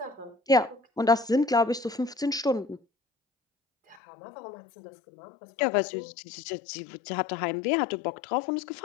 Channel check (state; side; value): drops out; right; at 4.0 s